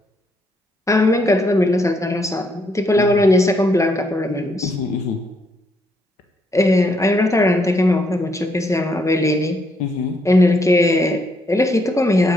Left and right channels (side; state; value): both; normal; correlation 0.74